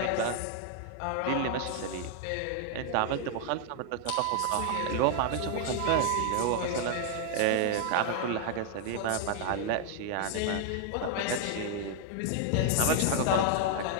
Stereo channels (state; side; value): different; both; correlation 0.00